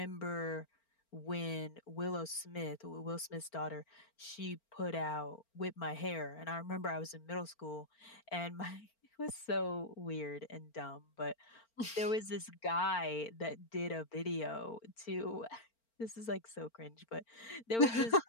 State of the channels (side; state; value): right; late; 4.4 ms